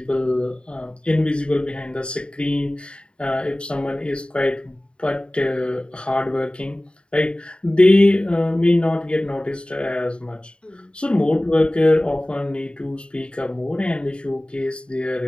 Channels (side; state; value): right; late; 0.053 ms